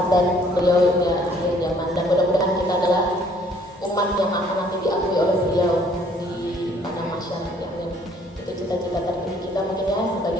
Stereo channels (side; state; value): both; normal; correlation 0.60